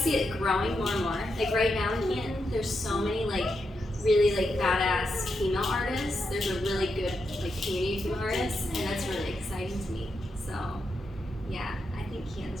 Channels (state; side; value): normal; both; correlation 0.84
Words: see it growing more and more. Like right now in Canton, there's so many like really like badass female artists. There's a really good like community of female artists, and that's really exciting to me. So yeah, I think